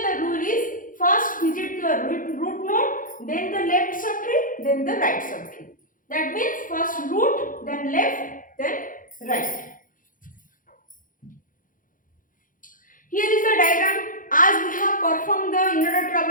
the rule is first visit the root node, then the left subtree, then the right subtree. That means first root, then left, then right. Here is the diagram. As we have performed the inner dot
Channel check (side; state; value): right; late; 0.39 ms